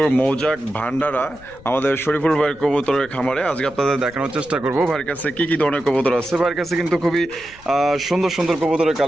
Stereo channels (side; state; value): left; noise; rumble, 22 dB below the sound